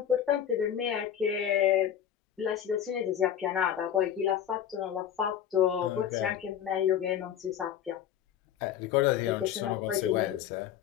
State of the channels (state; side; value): quieter; right; 9.7 dB